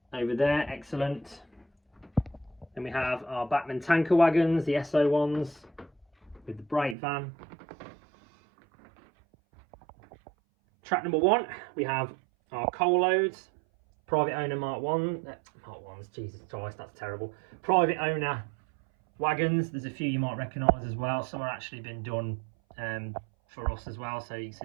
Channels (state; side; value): drops out; left; at 7.0 s